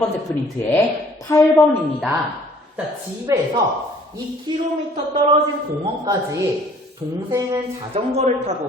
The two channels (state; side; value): normal; both; correlation 0.57